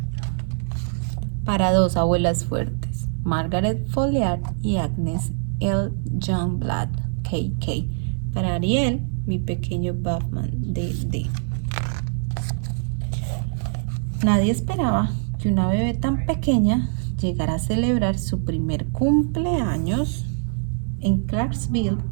Para dos abuelas fuertes, Margaret Folliard y Agnes L. Youngblood, KK. Para Ariel, mi pequeño Batman, DD. Nadie esperaba que una bebé tan pequeña llegara a celebrar su primer cumpleaños en Clarksville,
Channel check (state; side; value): silent; left; 58 dB below the other